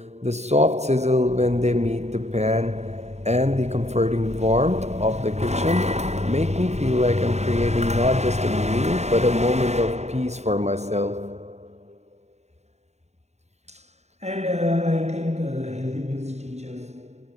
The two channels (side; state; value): left; late; 0.32 ms